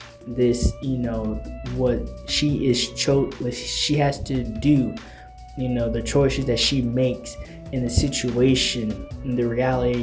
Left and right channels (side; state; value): both; identical; correlation 1.00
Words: This what she has to do, the choices that she makes in the situation, in the